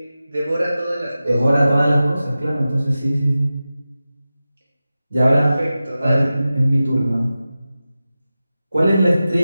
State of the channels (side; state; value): both; inverted; correlation -0.94